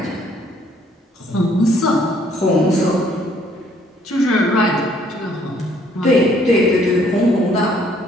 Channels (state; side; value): normal; both; correlation 0.64